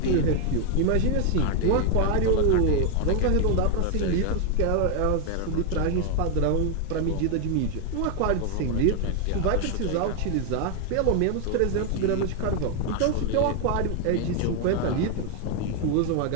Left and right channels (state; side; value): different; both; correlation 0.01